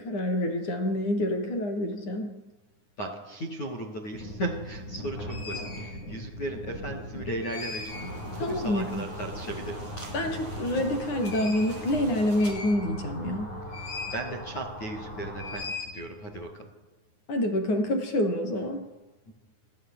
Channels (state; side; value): late; right; 9.7 ms